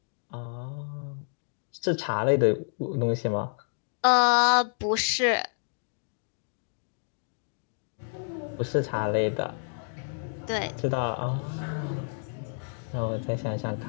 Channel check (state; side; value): silent; right; digital silence